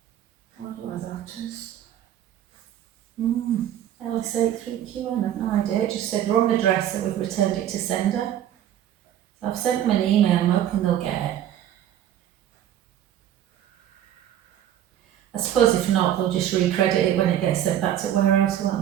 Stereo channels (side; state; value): left; quieter; 11.0 dB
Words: I don't know what that is. LS8 3QN, I've no idea. It just said wrong address, so we've returned it to sender. So I've sent them an email, I'm hoping they'll get it. I suppose if not, they'll just recredit it when it gets sent back to warehouse, won't